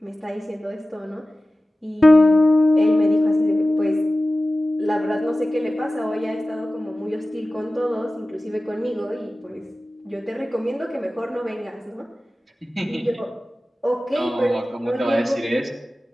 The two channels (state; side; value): normal; both; correlation 0.96